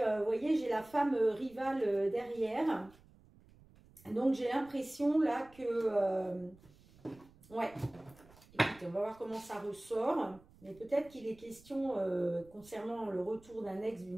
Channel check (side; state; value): right; noise; rumble, 25 dB below the sound